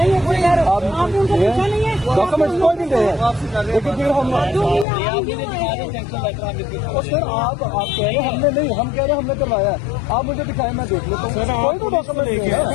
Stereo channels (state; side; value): drops out; right; at 4.9 s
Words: आपने उनको पूछा नहीं है? डॉक्यूमेंट्स कोई नहीं दे आपसे कर रहे लेकिन फिर हम सर आप कह रहे हमने नहीं, हम कह रहे हमने करवाया है, आप मुझे दिखाए मैं देख लेता हूँ। कोई तो डॉक्यूमेंट नहीं है।